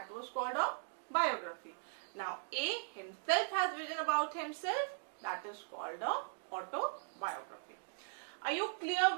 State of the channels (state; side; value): silent; left; digital silence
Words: was called a biography. Now, A himself has written about himself, that is called a autobiography. Are you clear